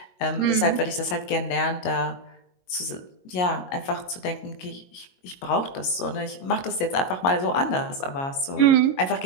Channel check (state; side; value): late; right; 22 ms